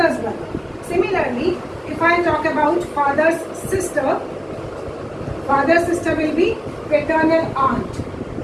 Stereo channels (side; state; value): both; identical; correlation 1.00